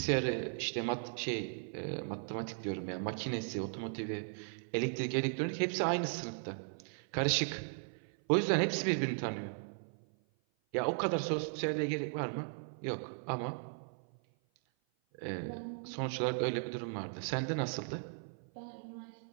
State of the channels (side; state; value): left; silent; 53 dB below the other